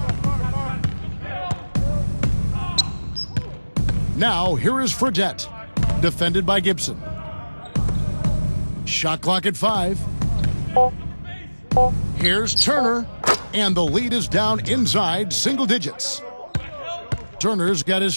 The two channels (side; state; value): both; inverted; correlation -1.00